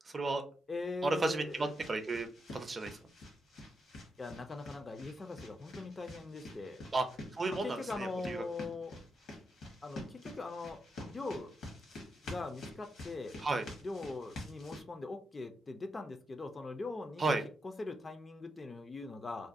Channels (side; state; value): both; normal; correlation 0.84